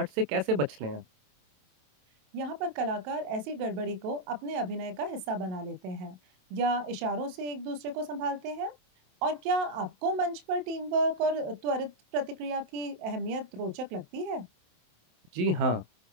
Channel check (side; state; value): left; late; 27 ms